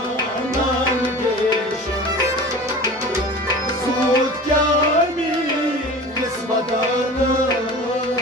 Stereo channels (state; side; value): normal; both; correlation 0.36